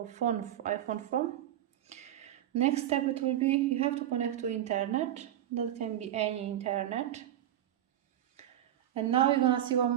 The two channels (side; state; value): left; quieter; 11.8 dB